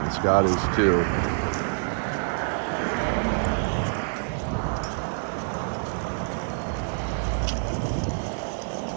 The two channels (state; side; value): silent; left; 60 dB below the other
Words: Scott is too.